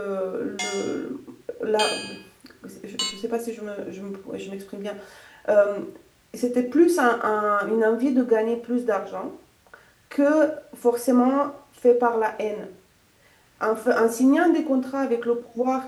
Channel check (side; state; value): both; identical; correlation 1.00